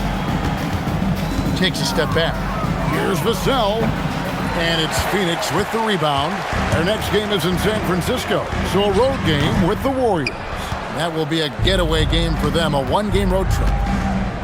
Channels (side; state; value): both; identical; correlation 1.00